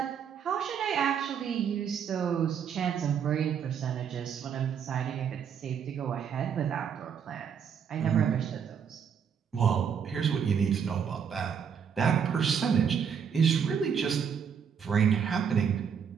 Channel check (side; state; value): left; quieter; 7.4 dB